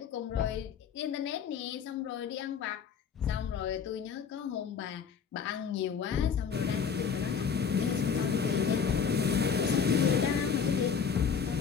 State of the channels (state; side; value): quieter; right; 6.6 dB